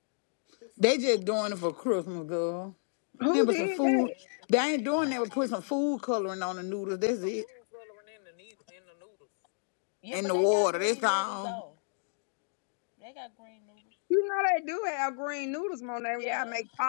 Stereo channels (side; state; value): right; silent; digital silence